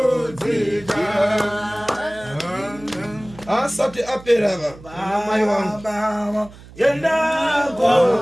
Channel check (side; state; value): right; noise; hum, 20 dB below the sound